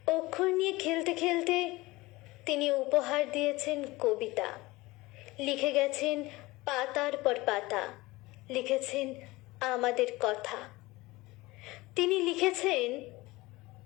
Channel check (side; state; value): right; quieter; 20.7 dB